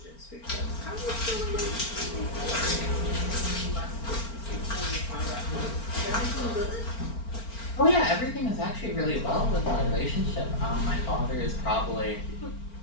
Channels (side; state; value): right; late; 4.4 ms